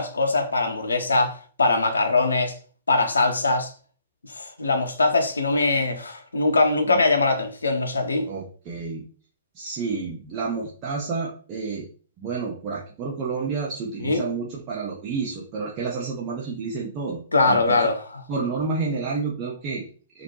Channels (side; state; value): both; inverted; correlation -0.64